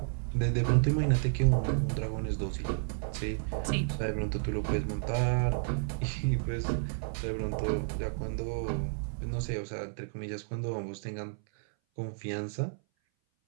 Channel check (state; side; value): silent; left; 57 dB below the other